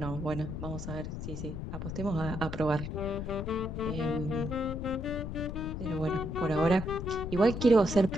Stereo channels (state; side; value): noise; left; rumble, 5 dB below the sound